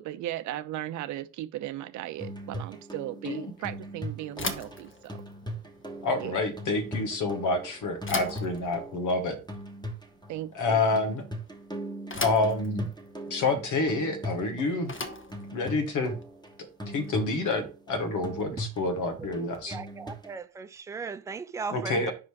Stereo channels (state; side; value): normal; both; correlation 0.14